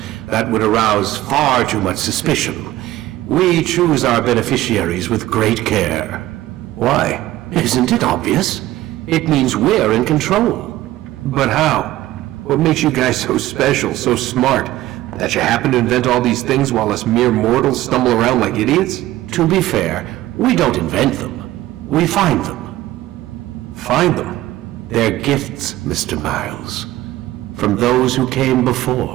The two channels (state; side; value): quieter; left; 15.7 dB